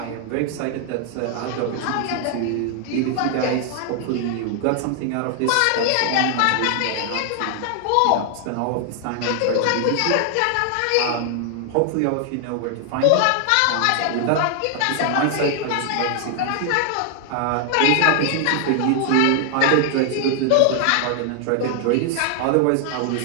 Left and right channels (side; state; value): both; different; correlation 0.00